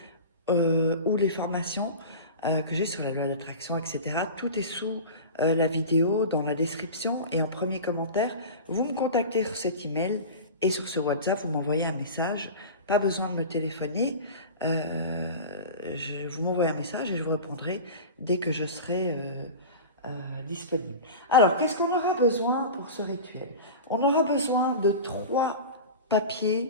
ou les formations que j'ai sur la loi d'attraction, etc. Tout est sous la vidéo, dans la description et en premier commentaire. Vous me contactez sur cet email et sur ce WhatsApp, vous m'envoyez un message. Pas besoin de me téléphoner. Vous m'envoyez un message et je vous répondrai dès que je serai disponible. Alors, qu'est-ce qu'on aura besoin pour ce rituel? On aura besoin de 3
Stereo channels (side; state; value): both; inverted; correlation -0.31